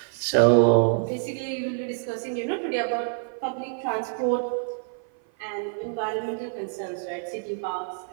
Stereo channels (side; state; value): left; silent; 55 dB below the other